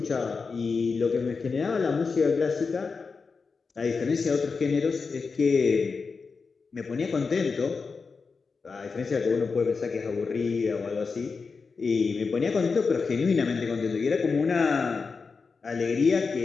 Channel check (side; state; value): right; quieter; 4.8 dB